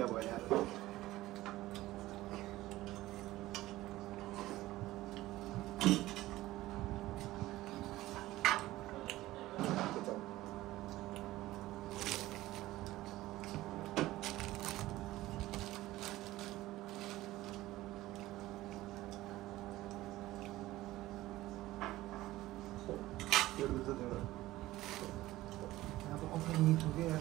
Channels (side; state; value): left; quieter; 16.7 dB